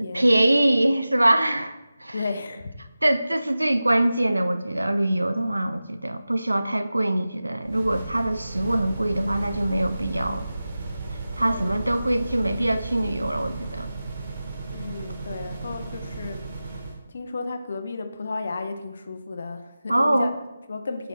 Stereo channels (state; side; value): inverted; both; correlation -0.95